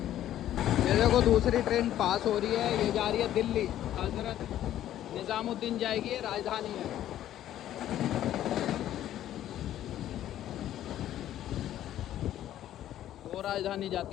देखो दूसरी ट्रेन पास हो रही है, ये जा रही है दिल्ली। हजरत निज़ामुद्दीन जाएगी, ये राजधानी है। दो राजधानी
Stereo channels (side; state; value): right; quieter; 12.2 dB